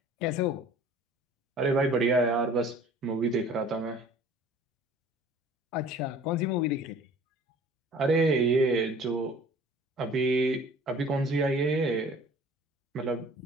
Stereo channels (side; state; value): both; normal; correlation 0.49